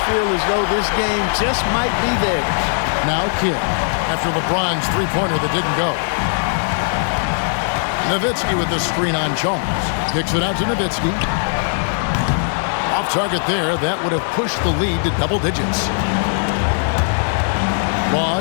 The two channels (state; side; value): silent; right; 62 dB below the other